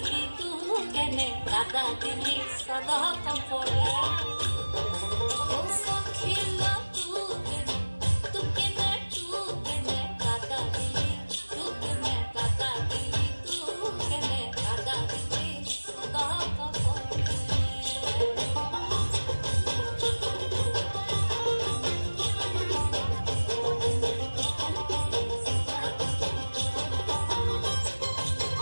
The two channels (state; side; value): inverted; both; correlation -1.00